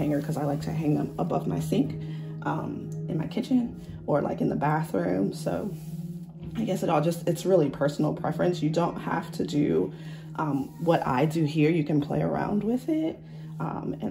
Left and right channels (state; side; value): identical; both; correlation 1.00